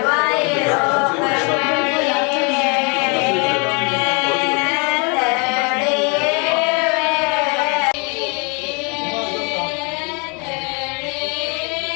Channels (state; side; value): quieter; right; 33.0 dB